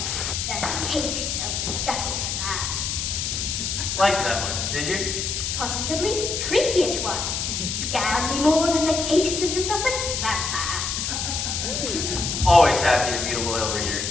the case of the speckled cat. Like that one, did you? Positively creepy it was. Scared me more than the case of the Sussex vampire. Always happy to meet a loyal reader.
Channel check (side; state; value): left; noise; hiss, 2 dB below the sound